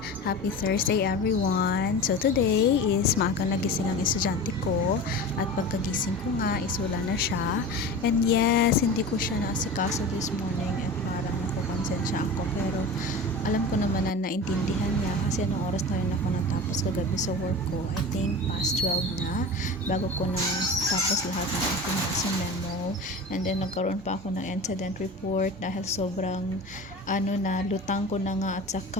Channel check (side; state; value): both; normal; correlation 0.32